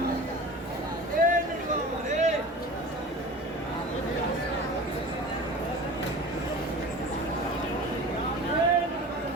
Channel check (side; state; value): both; normal; correlation 0.37